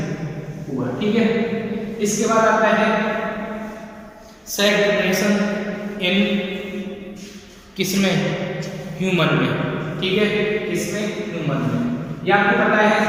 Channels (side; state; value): both; identical; correlation 1.00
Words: हुआ। ठीक है, इसके बाद आता है सेक्स डिटरमिनेशन इन किसमें? ह्यूमन में। ठीक है, किसमें? ह्यूमन में। यह आपको पता है